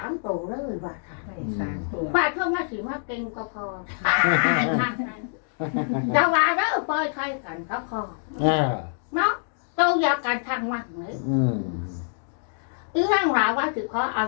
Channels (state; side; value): silent; right; digital silence